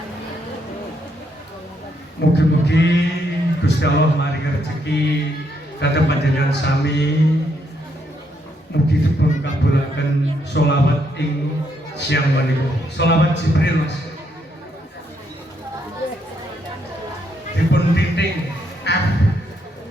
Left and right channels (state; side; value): normal; both; correlation 0.75